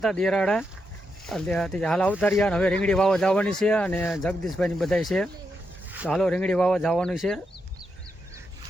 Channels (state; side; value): normal; both; correlation 0.83